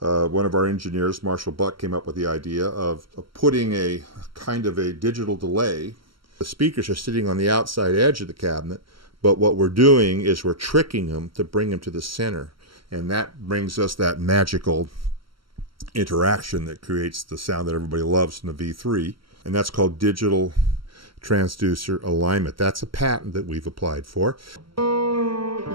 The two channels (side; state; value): left; late; 0.74 ms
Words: of our engineers, Marshall Buck, came up with the idea of putting a kind of a digital delay. The speakers are sitting on the outside edge of the cabinet, but what we're doing is we're tricking them to bring them to the center. And that brings us that magical interaction that creates the sound that everybody loves in the V3. And that's called digital transducer alignment. That's a patent that we've applied for. I